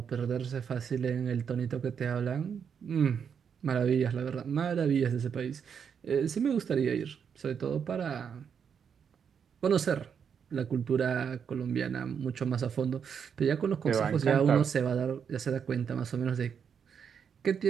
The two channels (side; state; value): left; quieter; 7.2 dB